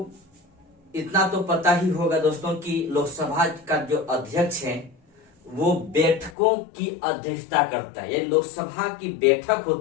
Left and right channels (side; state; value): right; drops out; at 6.4 s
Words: तो पता ही होगा दोस्तों कि लोकसभा का जो अध्यक्ष है वो बैठकों की अध्यक्षता करता है। यानी लोकसभा की बैठक